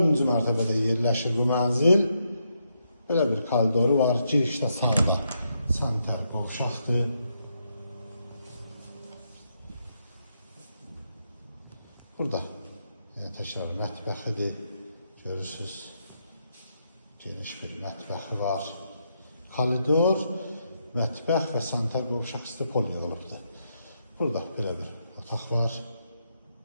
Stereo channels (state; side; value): inverted; both; correlation -0.80